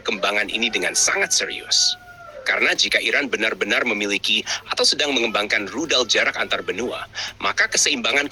ini dengan sangat serius. Karena jika Iran benar-benar memiliki atau sedang mengembangkan rudal jarak antar benua, maka keseimbangan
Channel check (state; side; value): identical; both; correlation 1.00